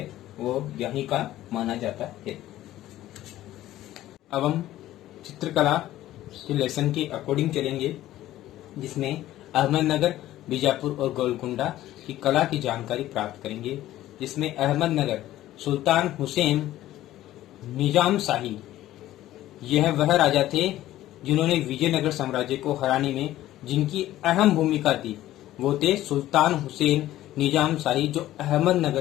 वो यहीं का माना जाता है। अब हम चित्रकला के लेसन के अकॉर्डिंग चलेंगे, जिसमें अहमदनगर, बीजापुर और गोलकुंडा की कला की जानकारी प्राप्त करेंगे। जिसमें अहमदनगर, सुल्तान हुसैन निजाम शाही, यह वह राजा थे जिन्होंने विजयनगर साम्राज्य को हराने में जिनकी अहम भूमिका थी। वो थे सुल्तान हुसैन निजाम शाही, जो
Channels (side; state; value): right; quieter; 14.4 dB